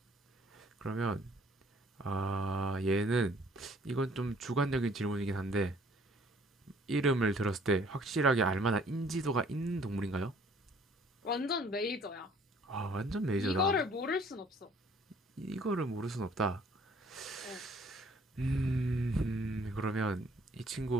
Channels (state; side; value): normal; both; correlation 0.58